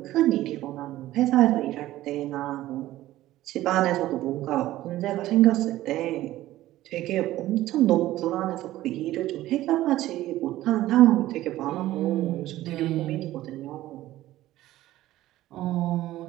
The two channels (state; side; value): quieter; left; 15.2 dB